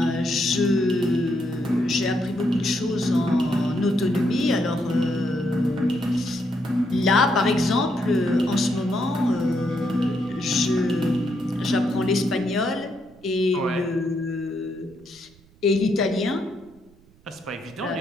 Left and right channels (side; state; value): right; noise; rumble, 28 dB below the sound